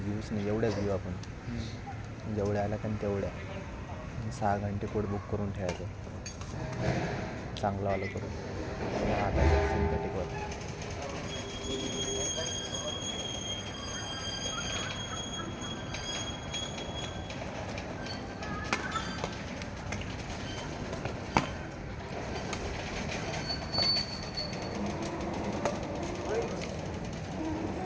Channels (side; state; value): both; identical; correlation 1.00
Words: घेऊच नाही, एवढ्याच घेऊ आपण. जेवढ्या आल्या कारण तेवढ्या. 6 घंटे कोट बुक करून ठेवायचं चांगलं आलं करून. आता सिंथेटिकवर